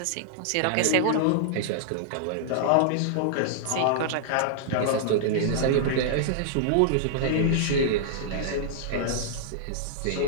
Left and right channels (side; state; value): both; different; correlation -0.01